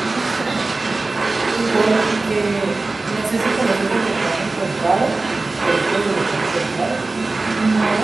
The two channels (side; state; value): left; quieter; 3.4 dB